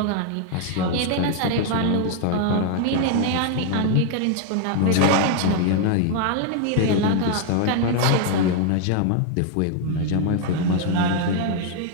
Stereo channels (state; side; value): different; both; correlation 0.00